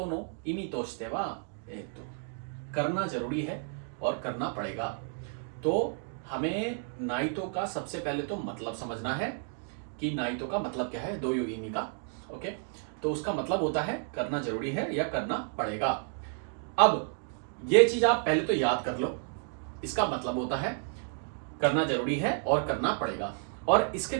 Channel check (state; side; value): silent; left; 57 dB below the other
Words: の意味としては、करना जरूरी है और करना पड़ेगा। तो हमें नाइटो का सबसे पहले तो मतलब समझना है कि नाइटो का मतलब क्या है, दो युगिनी का। ओके, तो उसका मतलब होता है करना जरूरी है या करना पड़ेगा। अब ये चीज आप पहले तो याद कर लो, इसका मतलब होता है करना जरूरी है और करना पड़ेगा, और इसके